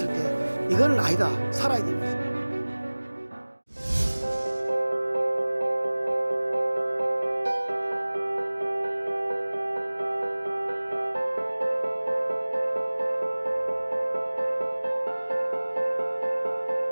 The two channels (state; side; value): inverted; both; correlation -1.00